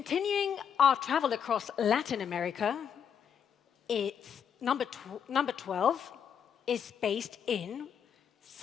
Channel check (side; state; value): right; quieter; 7.9 dB